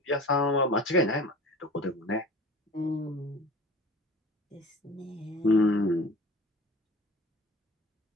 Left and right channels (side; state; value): both; normal; correlation 0.41